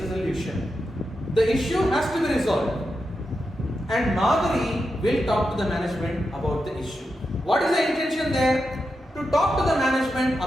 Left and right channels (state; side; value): normal; both; correlation 0.88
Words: The issue has to be resolved and Madhuri will talk to the management about the issue. What is the intention there? To talk to the management